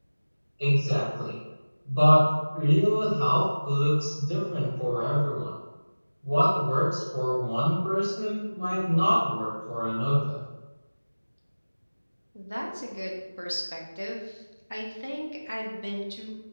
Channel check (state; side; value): inverted; both; correlation -1.00